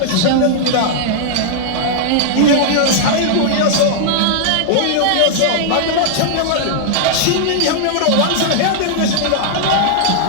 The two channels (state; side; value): different; both; correlation -0.01